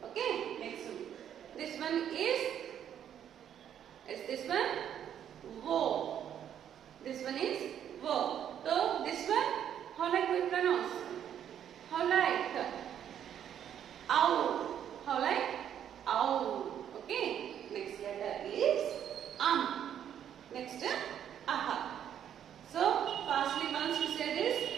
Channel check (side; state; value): left; quieter; 9.6 dB